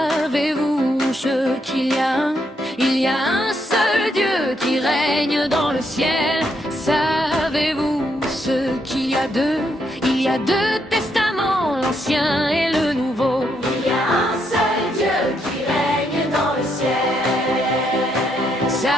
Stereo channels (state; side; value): normal; both; correlation 0.77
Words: ce qu'il y a? Il y a un seul Dieu qui règne dans le ciel. Savez-vous ce qu'il y a deux? Il y a deux testaments, l'Ancien et le Nouveau. Il y a un seul Dieu qui règne dans le ciel.